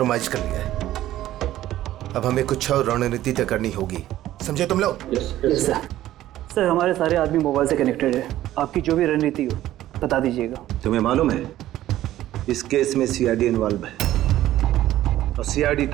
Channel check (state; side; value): quieter; left; 13.9 dB